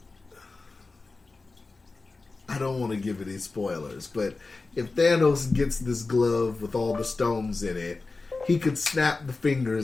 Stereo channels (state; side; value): quieter; right; 3.7 dB